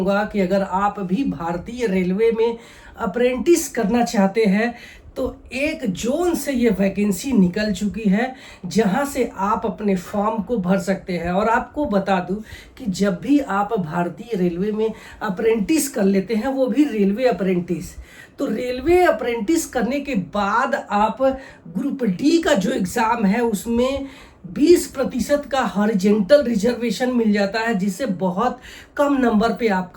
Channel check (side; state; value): both; identical; correlation 1.00